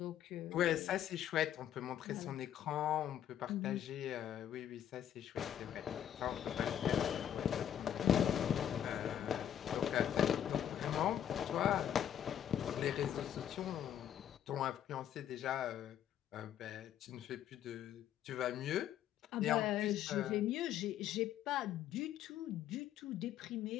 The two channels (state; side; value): quieter; right; 10.3 dB